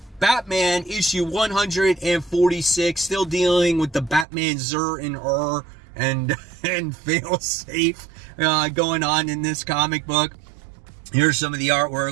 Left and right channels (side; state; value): left; drops out; at 4.2 s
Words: Batman issue 146. Still dealing with the Batman Zur and fail safe going on in this comic book. Here's some of the